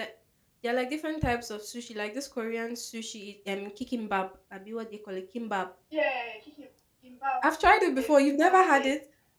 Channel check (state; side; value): identical; both; correlation 1.00